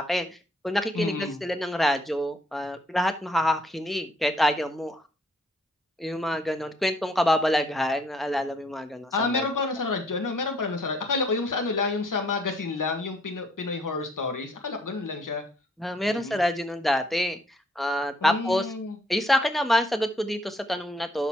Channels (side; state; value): both; normal; correlation 0.65